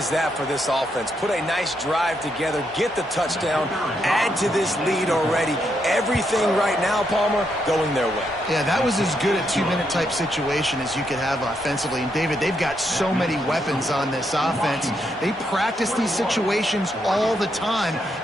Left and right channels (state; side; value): normal; both; correlation 0.79